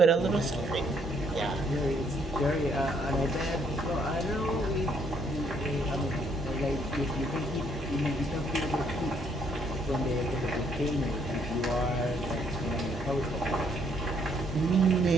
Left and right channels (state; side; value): normal; both; correlation 0.68